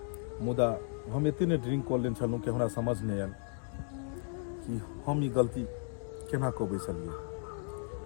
मुदा हम इतने ड्रिंक कर लेन छलूँ कि हमरा समझ नहीं आयल कि हम ई गलती केना कऽ बैसलिए।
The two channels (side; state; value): right; silent; 55 dB below the other